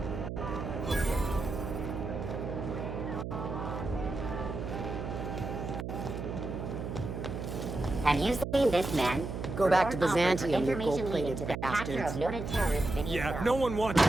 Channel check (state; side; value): noise; right; hum, 5 dB below the sound